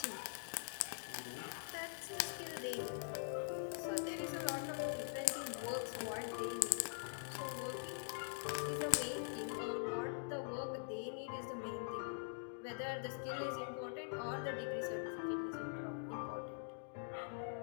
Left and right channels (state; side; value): silent; right; digital silence